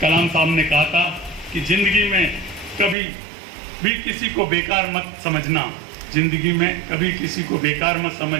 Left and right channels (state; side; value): drops out; left; at 3.0 s